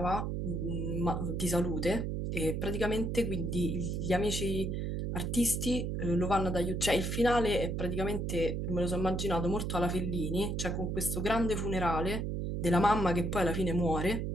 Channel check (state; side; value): noise; right; hum, 1 dB below the sound